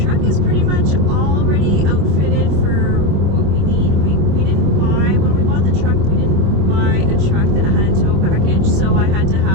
is pretty much already outfitted for what we need. When we bought the truck, we didn't buy a truck that had a tow package, so I had to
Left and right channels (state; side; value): late; left; 25 ms